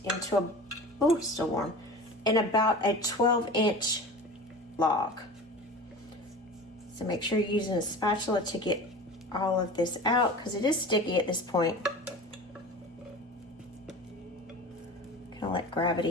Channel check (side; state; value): both; normal; correlation 0.35